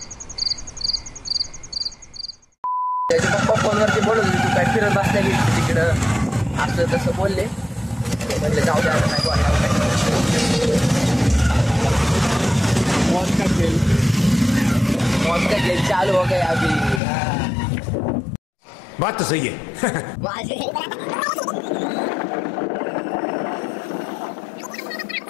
त्याचे पप्पा फोनवरती बोलत होते तू काय फिरत बसल्या की तिकडं असं तसं बोलले. म्हटलं जाऊ द्या नाही मौत का खेल चालू हो गया अभी. बात तो सही है.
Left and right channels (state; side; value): drops out; right; at 17.0 s